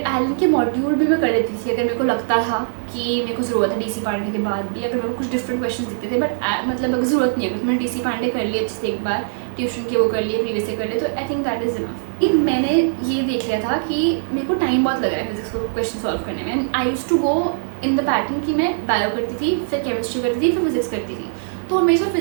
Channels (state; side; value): silent; left; digital silence